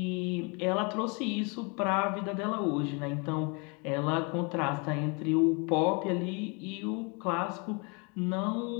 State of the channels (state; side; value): quieter; right; 32.2 dB